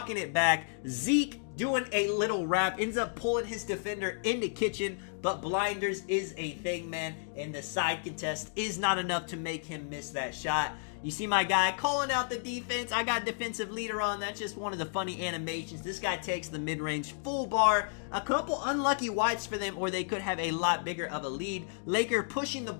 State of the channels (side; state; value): right; silent; digital silence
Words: it back. Zeke doing a little wrap. Ends up pulling his defender into Kitchen. But blinders is a thing, man. And the side contest is not enough to make him miss that shot. You see my guy calling out the defense. I got defensive leader on. That's just one of the funny animations. This guy takes the mid-range full bar. A couple unlucky wides for them, or they could have a lot bigger of a lead. Laker pushing the